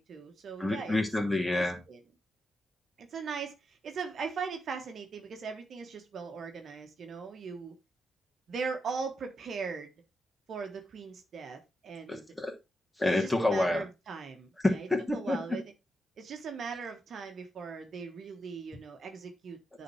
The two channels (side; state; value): both; normal; correlation 0.86